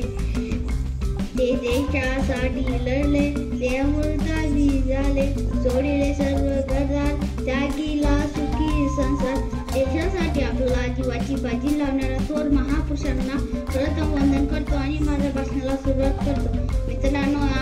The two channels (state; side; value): identical; both; correlation 1.00